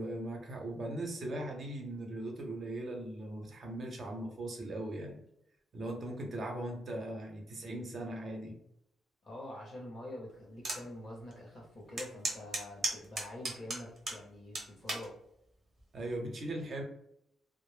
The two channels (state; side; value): normal; both; correlation 0.78